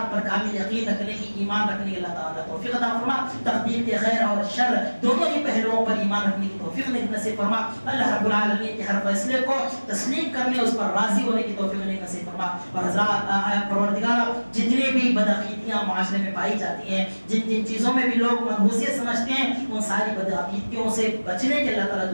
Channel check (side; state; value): both; inverted; correlation -1.00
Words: پر کامل یقین رکھنے کی, ایمان رکھنے کی اللہ تعالیٰ توفیق عطا فرمائے. تقدیر کے خیر اور شر دونوں ہی پہلوؤں پر ایمان رکھنے کی توفیق نصیب فرما. اللہ رب العالمین کے ہر فیصلے کو تسلیم کرنے, اس پر راضی ہونے کی توفیق نصیب فرما. اور حضرات پروردگار جتنی بھی بدعقیدگیاں معاشرے میں پائی جاتی ہیں, جن چیزوں میں بھی لوگ منحوسیت سمجھتے ہیں, ان ساری بدعقیدگیوں سے بچنے کے اللہ